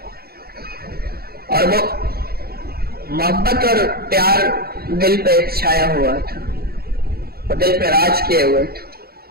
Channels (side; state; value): left; late; 0.45 ms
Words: اور وہ محبت اور پیار دل پہ چھایا ہوا تھا، وہ دل پہ راج کیے ہوئے تھے.